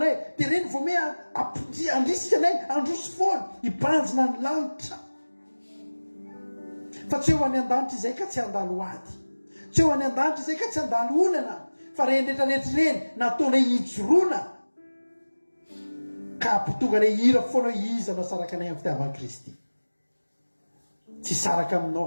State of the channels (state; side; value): inverted; both; correlation -1.00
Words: Dia reny vao me andrisika anay androso foana. Hibanjina ny lanitra. Fa tsy eo any an-danitra izay ka tsy handalo ady. Tsy eo any an-danitra izay ka tsy handalo olana. Fa reny rehetrarehetra reny nataonay hijoroana. Ka ampitonga anay hira foana iza no saraka anay amin'ny fitiavan'i Kristy. Tsy saraka